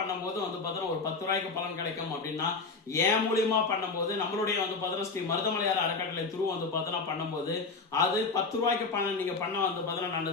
வந்து பார்த்தோன்னா ஒரு 10 ரூபாய்க்கு பலன் கிடைக்கும் அப்படின்னா ஏன் மூலியமா பண்ணும்போது நம்மளுடைய வந்து பார்த்தோன்னா ஸ்ரீ மருதமலையார் அறக்கட்டளை துரு வந்து பார்த்தோன்னா பண்ணும்போது அது 10 ரூபாய்க்கு பணம் நீங்க பண்ண வந்து பார்த்தோன்னா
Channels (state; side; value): quieter; right; 4.2 dB